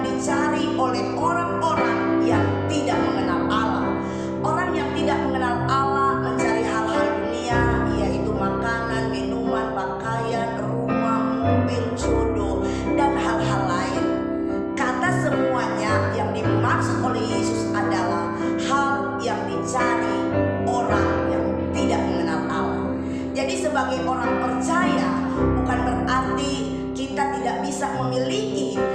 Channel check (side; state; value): both; identical; correlation 1.00